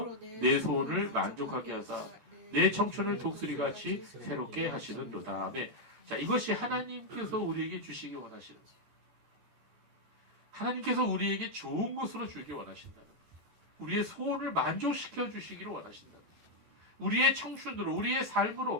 내 소원을 만족하게 하사 내 청춘을 독수리같이 새롭게 하시는도다. 아멘. 자, 이것이 하나님께서 우리에게 주시기 원하시는 거예요. 하나님께서 우리에게 좋은 것으로 주기 원하신다는 거예요. 우리의 소원을 만족시켜 주시기를 원하신다는 거예요. 우리의 청춘으로 우리의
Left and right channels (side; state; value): left; late; 14 ms